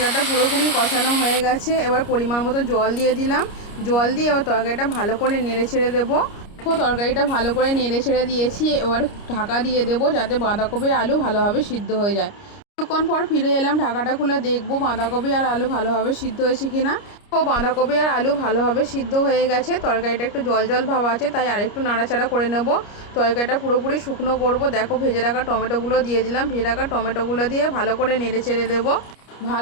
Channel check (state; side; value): late; right; 29 ms